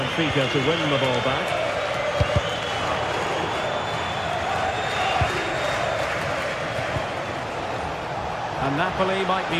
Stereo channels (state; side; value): identical; both; correlation 1.00